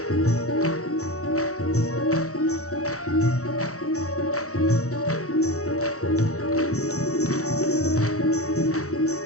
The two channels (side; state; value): right; late; 0.65 ms